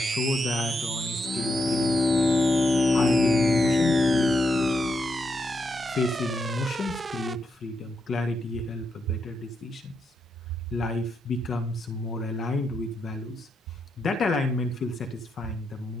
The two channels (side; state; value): both; normal; correlation 0.82